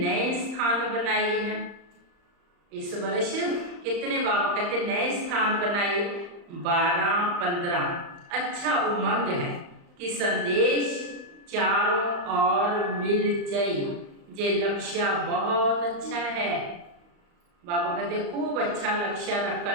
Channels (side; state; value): left; late; 35 ms